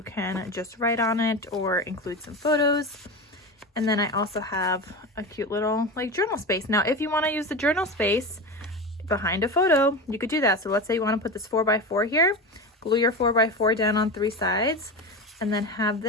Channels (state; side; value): normal; both; correlation 0.24